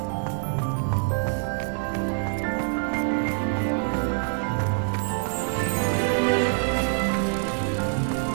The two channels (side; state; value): left; silent; digital silence